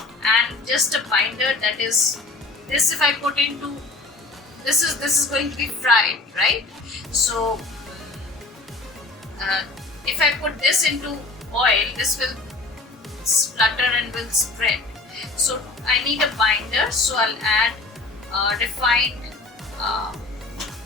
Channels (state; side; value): quieter; right; 3.3 dB